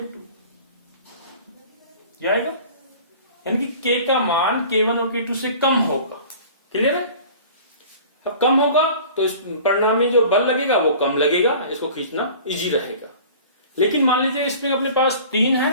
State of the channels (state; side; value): inverted; both; correlation -0.44